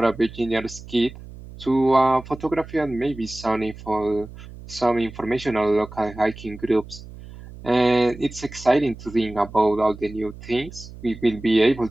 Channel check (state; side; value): noise; right; hum, 16 dB below the sound